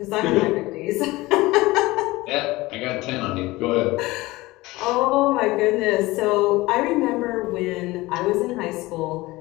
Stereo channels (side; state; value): right; quieter; 20.1 dB